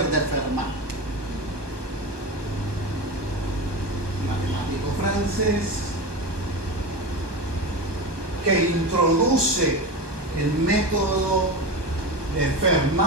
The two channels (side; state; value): left; late; 1.2 ms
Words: de Fermat, matemático francés, que introduce el método de